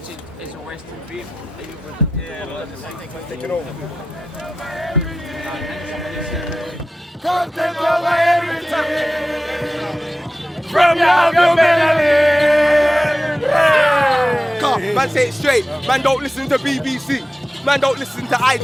as a Western people? Are you presented? Take it over. From your Come, man, say it straight. Man, don't listen to BBC. Man, don't listen to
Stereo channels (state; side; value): normal; both; correlation 0.93